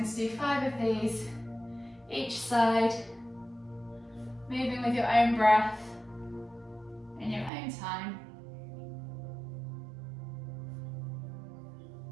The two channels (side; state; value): left; drops out; at 7.5 s